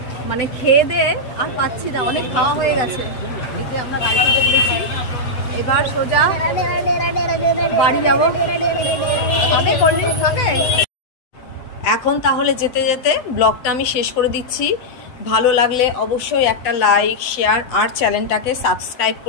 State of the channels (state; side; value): late; right; 8.0 ms